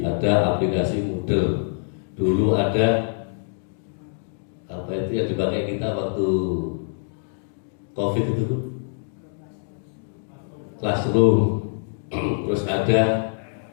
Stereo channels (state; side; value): silent; right; digital silence